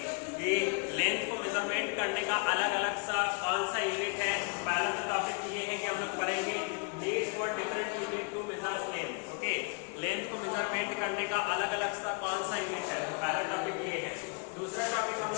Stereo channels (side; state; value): right; quieter; 35.1 dB